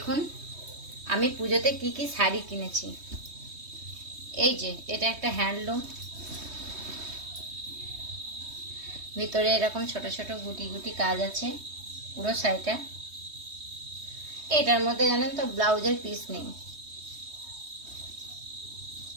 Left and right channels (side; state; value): left; late; 3.2 ms